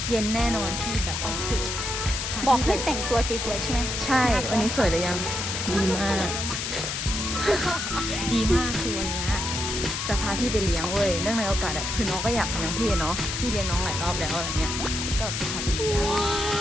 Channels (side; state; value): left; noise; hiss, 3 dB below the sound